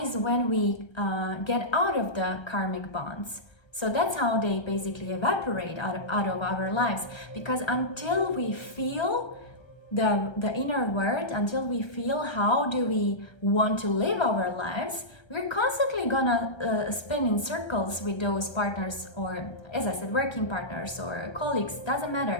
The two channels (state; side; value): late; right; 1.3 ms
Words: is when we get out of the karmic bonds. So that's how they basically evaporate out of our lives. Because until we feel the inner worth, until we feel how do we want to live our lives, we're constantly gonna spin in circles with those partners, or as I said, working partners or colleagues, doesn't